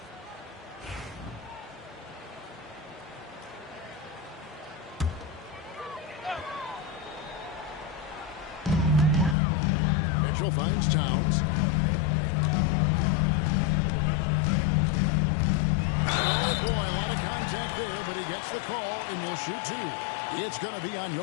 Mitchell finds Towns. Oh, boy, a lot of contact there, but he gets the call and will shoot 2. It's going to be on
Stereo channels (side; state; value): right; drops out; at 9.3 s